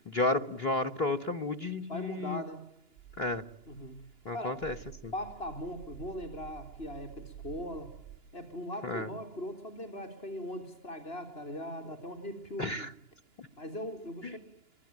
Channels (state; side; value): late; right; 2.9 ms